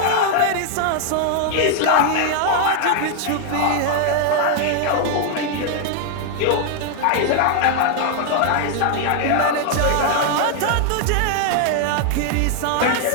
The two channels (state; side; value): different; both; correlation 0.00